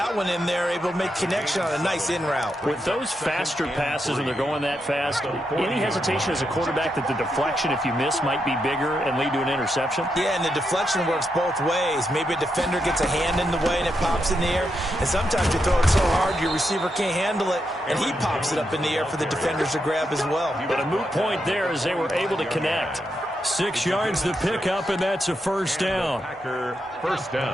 one in there, able to make connection on a nice in route. With those faster passes and they're going that fast, any hesitation as a quarterback that the deflection, if you miss, might be bigger and lead to an interception? Yeah, and the deflection works both ways. Maybe a defender gets a hand in the way and it pops in the air. And sometimes you throw it so hard your receiver can't handle it, and he pops it up in the air for the defenders to grab as well. But a moot point there as they were able to connect. 6 yards the pickup, and that's a 1st down. Packer 1st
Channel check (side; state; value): both; normal; correlation 0.83